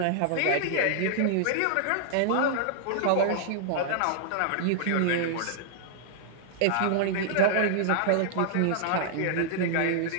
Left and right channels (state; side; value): different; both; correlation -0.01